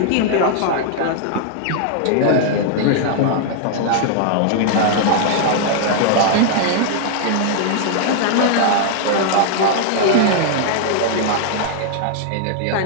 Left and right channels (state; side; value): different; both; correlation -0.01